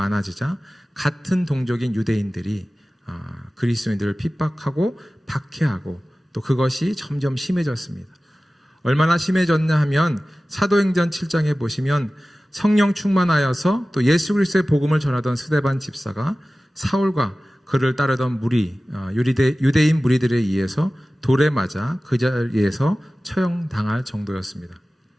같은 동족인 유대인들이 그리스도인들을 핍박하고 박해하고 또 그것이 점점 심해졌습니다. 얼마나 심해졌냐 하면 사도행전 7장에 보시면 성령 충만하여서 또 예수 그리스도의 복음을 전하던 스데반 집사가 사울과 그를 따르던 유대인 무리들에 의해서 돌에 맞아 그 자리에서 처형당할 정도였습니다.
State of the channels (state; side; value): normal; both; correlation 0.96